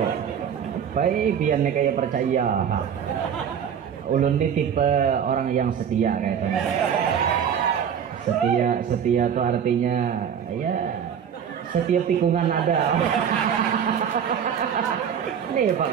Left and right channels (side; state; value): left; quieter; 8.1 dB